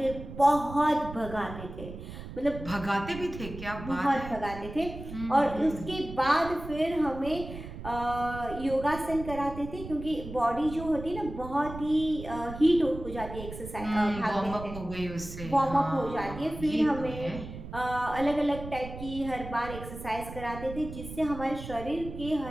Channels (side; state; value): right; noise; rumble, 11 dB below the sound